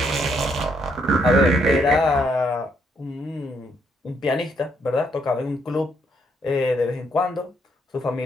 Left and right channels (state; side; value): normal; both; correlation 0.73